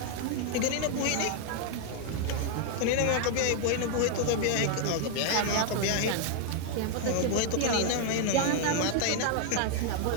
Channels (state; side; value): different; both; correlation 0.00